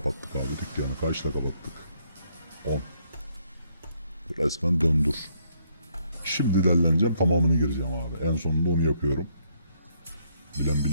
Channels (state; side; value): inverted; both; correlation -0.71